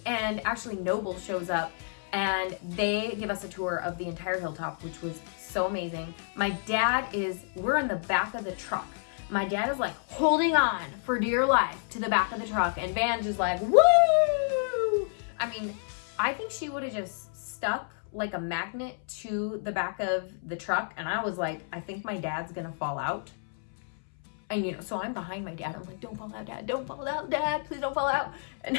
and actually Noble shows up, and they give us a tour of the entire hilltop, which was so amazing. We're in the back of the truck. My dad is like holding on for dear life to the back of the truck, and Vange is like, woo! I mean, I think she would have just stuck like a magnet to the back of the truck, and I was like, I think my dad's gonna fall out. And so I'm behind my dad. I'm like, don't fall out, Dad. Don't fall out, Dad. Please don't fall out.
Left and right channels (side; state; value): right; silent; 58 dB below the other